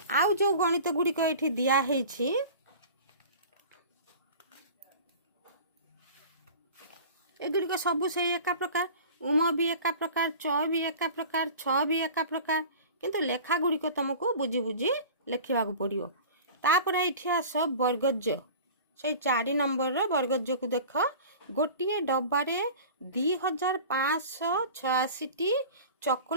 ଆଉ ଯେଉଁ ଗଣିତ ଗୁଡ଼ିକ ଏଇଠି ଦିଆହେଇଛି, ଏଗୁଡ଼ିକ ସବୁ ସେଇ ଏକା ପ୍ରକାର। उम भी एका प्रकार, च भी एका प्रकार, छ भी एका प्रकार, किंतु लेखा गुड़िक तुमको बुझी बुझी लेखा पड़ो। तापर ये आस वर्गज, से 4 नंबर वर्गज को देख, गोटे डब्बारे 2586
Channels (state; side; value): inverted; both; correlation -0.39